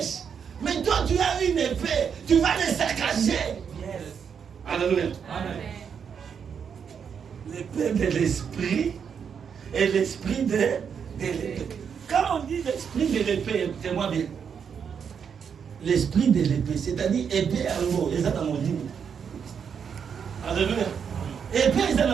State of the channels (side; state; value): left; quieter; 7.1 dB